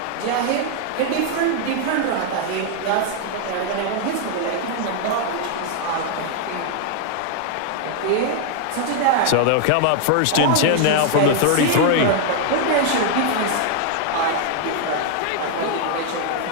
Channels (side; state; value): both; different; correlation 0.00